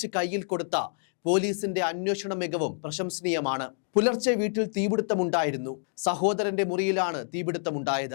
കയ്യിൽ കൊടുത്ത പോലീസിന്റെ അന്വേഷണ മികവും പ്രശംസനീയമാണ്. പുലർച്ചെ വീട്ടിൽ തീപിടുത്തമുണ്ടായിരുന്നു. സഹോദരന്റെ മുറിയിലാണ്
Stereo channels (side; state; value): right; silent; digital silence